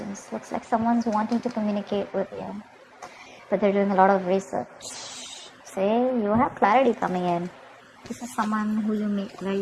Looks like someone's wanting to communicate with you, but they're doing a lot of research. Say, you have clarity coming in. This is someone who you make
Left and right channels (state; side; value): identical; both; correlation 1.00